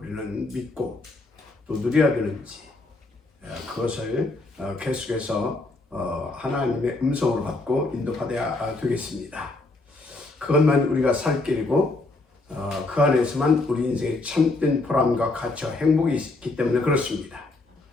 믿고 또 누려야 되는지 그것을 계속해서 하나님의 음성으로 받고 인도받아야 되겠습니다. 그것만 우리가 살 길이고 그 안에서만 우리 인생의 참된 보람과 가치와 행복이 있기 때문에 그렇습니다.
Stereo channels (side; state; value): right; quieter; 3.2 dB